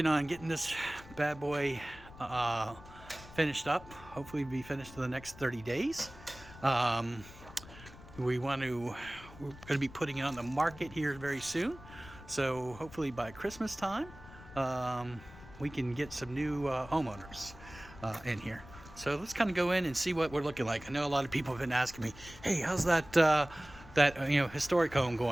on getting this bad boy finished up. Hopefully be finished in the next 30 days. We're going to be putting it on the market here very soon. So hopefully by Christmas time, we can get some new homeowners in here. So let's kind of go in and see what we're looking like. I know a lot of people have been asking me, hey, how's that historic home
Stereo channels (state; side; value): noise; left; rumble, 18 dB below the sound